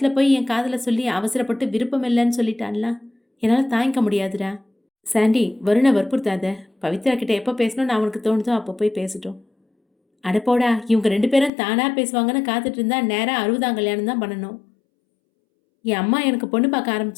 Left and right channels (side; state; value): right; drops out; at 11.5 s